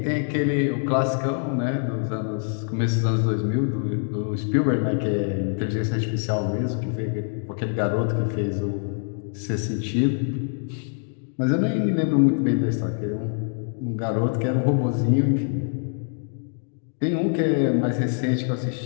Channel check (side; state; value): right; silent; 56 dB below the other